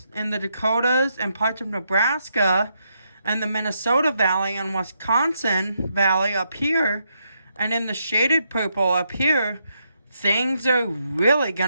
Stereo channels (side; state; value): both; inverted; correlation -0.79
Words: in the Dakotas, and parts of Nebraska, and the Minnesota Valley and Wisconsin Valley up here, and in the shaded purple up here, things are really going